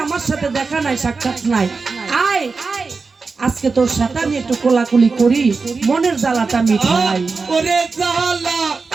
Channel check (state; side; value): quieter; left; 4.4 dB